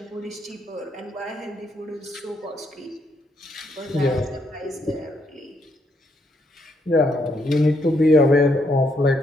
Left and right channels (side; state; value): both; normal; correlation 0.75